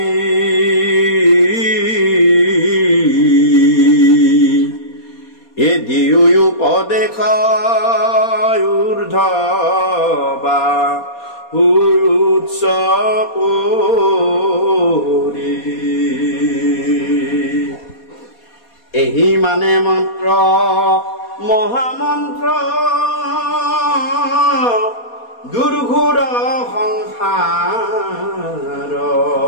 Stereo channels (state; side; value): late; right; 4.2 ms